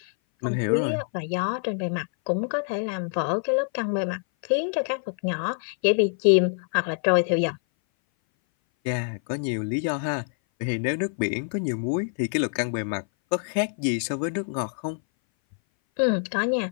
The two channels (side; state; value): right; silent; 58 dB below the other